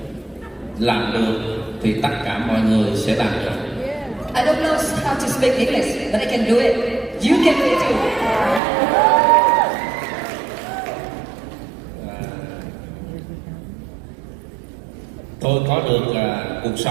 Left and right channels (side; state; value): left; drops out; at 8.6 s